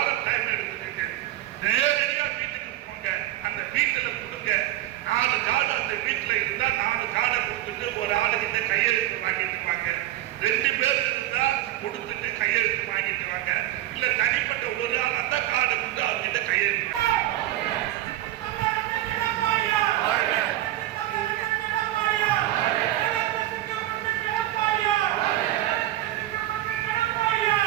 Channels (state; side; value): quieter; left; 14.4 dB